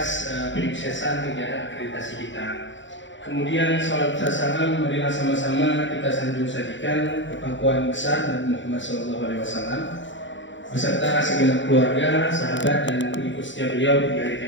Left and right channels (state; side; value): late; right; 0.54 ms